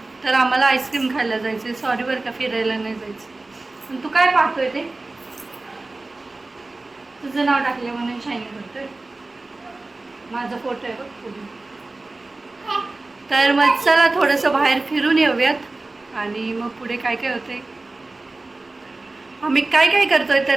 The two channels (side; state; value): left; quieter; 3.2 dB